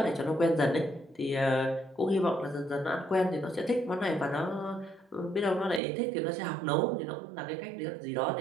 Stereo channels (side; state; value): left; drops out; at 5.8 s